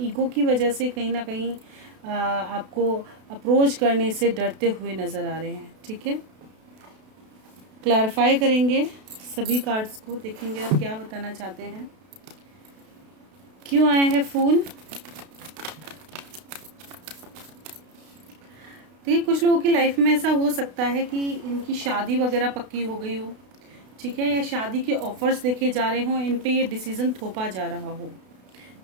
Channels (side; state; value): left; late; 32 ms